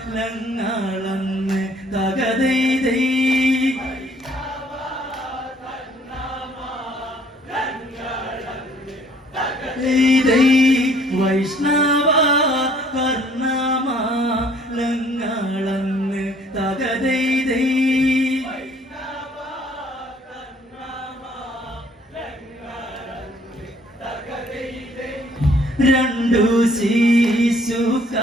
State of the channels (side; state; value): both; normal; correlation 0.60